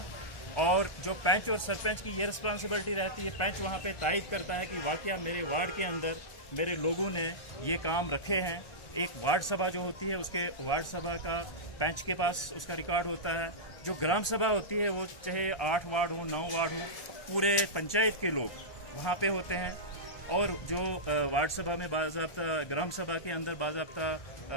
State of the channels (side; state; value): right; late; 1.3 ms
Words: और जो पंच और सरपंच की ये रिस्पॉन्सिबिलिटी रहती है, पंच वहाँ पे तायद करता है कि वाकया मेरे वार्ड के अंदर मेरे लोगों ने ये काम रखे हैं। एक वार्ड सभा जो होती है, उसके वार्ड सभा का पंच के पास उसका रिकॉर्ड होता है। जो ग्राम सभा होती है वो चाहे 8 वार्ड हो, 9 वार्ड हो, पूरे पंचायत के लोग वहाँ पे होते हैं। और जो वार्ड सभा में बाज़ाब्ता, ग्राम सभा के अंदर बाज़ाब्ता